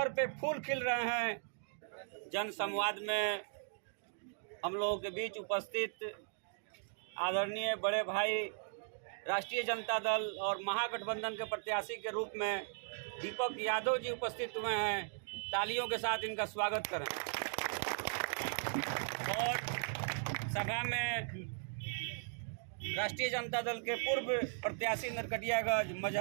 पे फूल खिल रहे हैं। जन संवाद में हम लोगों के बीच उपस्थित आदरणीय बड़े भाई राष्ट्रीय जनता दल और महागठबंधन के प्रत्याशी के रूप में दीपक यादव जी उपस्थित हुए हैं। तालियों के साथ इनका स्वागत करें। और सभा में राष्ट्रीय जनता दल के पूर्व प्रत्याशी नरकटियागंज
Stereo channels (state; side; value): silent; left; digital silence